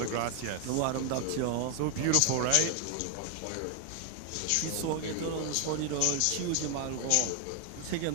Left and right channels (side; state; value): both; different; correlation 0.00